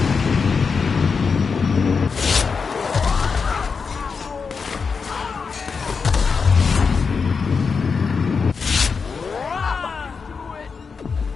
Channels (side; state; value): right; quieter; 5.3 dB